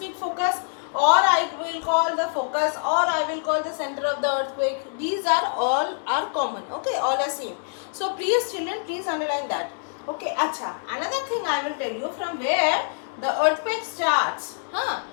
focus, or I will call the focus, or I will call the center of the earthquake. These are all are common. Okay, all are same. So please children, please underline that. Okay, acha. Another thing I will tell you, from where the earthquake starts.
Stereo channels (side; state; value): right; silent; digital silence